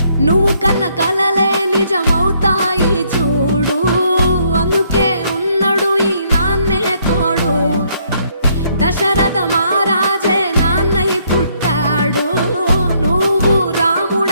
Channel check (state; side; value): inverted; both; correlation -0.69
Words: నువ్వు కన్న కలలే నిజమవుతాయి చూడు, అందుకే ఉన్నాడు ఈ నాన్నే తోడు. దశరథ మహారాజే నాన్నై పుట్టాడు, నువ్వు